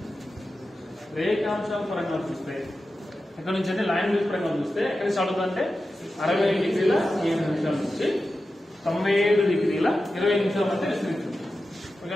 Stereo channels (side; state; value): both; normal; correlation 0.92